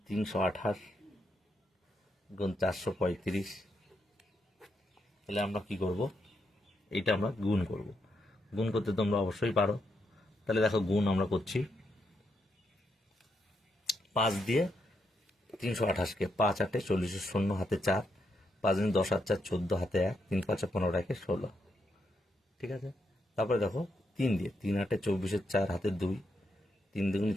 328 গুণ 435, তাহলে আমরা কি করব, এইটা আমরা গুণ করব। গুণ করতে তোমরা অবশ্যই পারো। তাহলে দেখো গুণ আমরা করছি, 5 দিয়ে 328কে 5 8 40-এর শূন্য হাতে 4, 5 10 আর 4 14 হাতে 1, 3 5 15 রাখে 16। ঠিক আছে, তারপরে দেখো 3 দিয়ে 3 8 24-এর 4 হাতে 2, 3 2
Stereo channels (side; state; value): both; normal; correlation 0.80